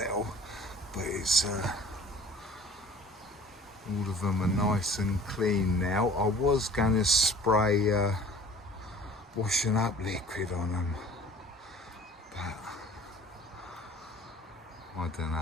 but it's all of them are nice and clean now. I was going to spray washing up liquid on them, but I don't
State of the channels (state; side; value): normal; both; correlation 0.47